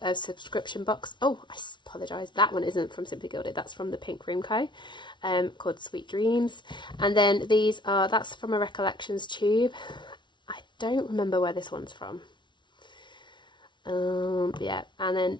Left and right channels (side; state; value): right; late; 0.23 ms